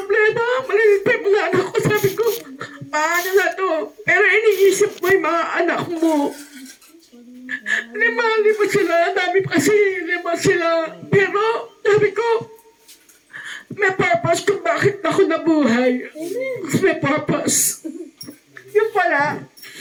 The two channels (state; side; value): identical; both; correlation 1.00